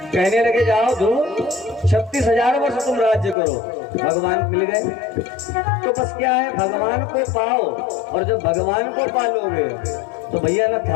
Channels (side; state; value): right; drops out; at 3.4 s